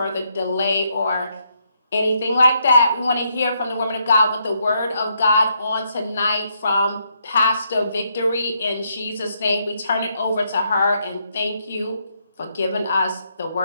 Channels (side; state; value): both; inverted; correlation -0.76